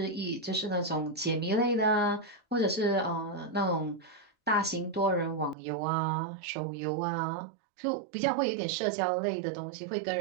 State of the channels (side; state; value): left; drops out; at 5.6 s